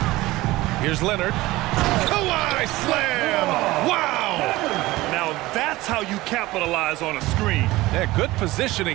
Here's Leonard. Kawhi slam! Wow! Now that's how you capitalize on a screen. Yeah, good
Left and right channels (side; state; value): left; quieter; 18.9 dB